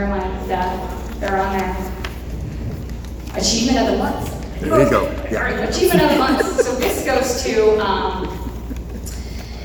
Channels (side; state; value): both; identical; correlation 1.00